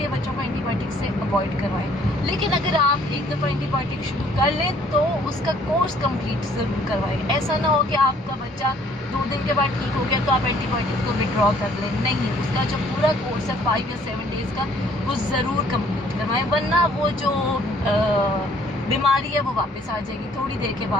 बच्चों को एंटीबायोटिक से अवॉइड करवाएं। लेकिन अगर आप एक दफ़ा एंटीबायोटिक शुरू कर लें तो उसका कोर्स कंप्लीट ज़रूर करवाएं। ऐसा ना हो कि आपका बच्चा 2 दिन के बाद ठीक हो गया तो आप एंटीबायोटिक को विड्रॉ कर लें, नहीं, उसका जो पूरा कोर्स है 5 या 7 डेज़ का वो ज़रूर कंप्लीट करवाएं, वरना वो जो बीमारी है वो वापस आ जाएगी थोड़ी देर के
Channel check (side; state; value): both; normal; correlation 0.60